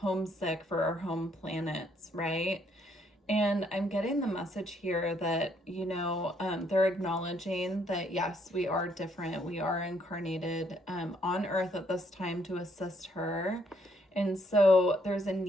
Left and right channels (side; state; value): both; normal; correlation 0.69